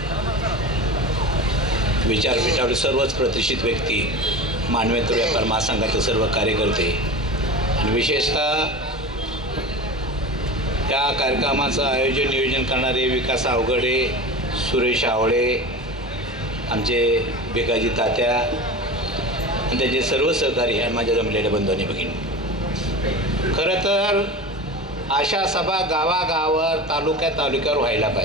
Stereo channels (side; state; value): both; normal; correlation 0.30